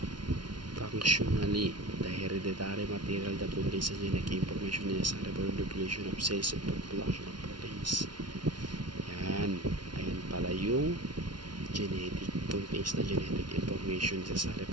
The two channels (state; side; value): late; left; 0.70 ms